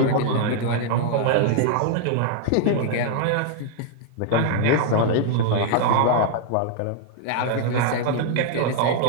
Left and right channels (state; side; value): different; both; correlation 0.00